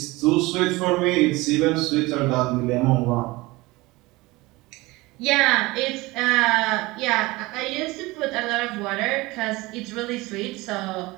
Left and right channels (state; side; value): quieter; left; 21.5 dB